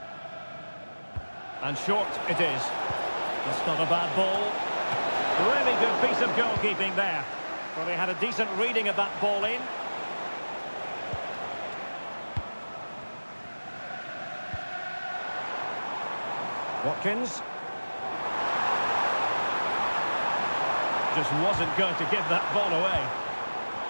And short it is. That's not a bad ball. Really good piece of goalkeeping there. Well, they had a decent reading of that ball in. Watkins. Just wasn't going to give that ball away.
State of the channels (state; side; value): inverted; both; correlation -1.00